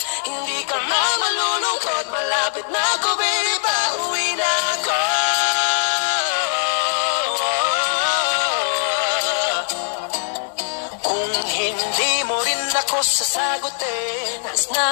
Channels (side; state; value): right; silent; digital silence